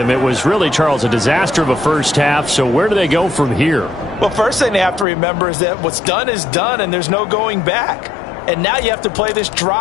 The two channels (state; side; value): drops out; right; at 5.1 s